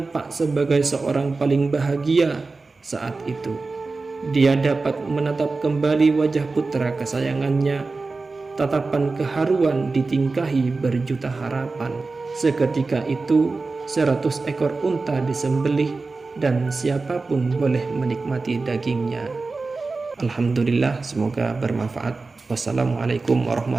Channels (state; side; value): quieter; left; 3.8 dB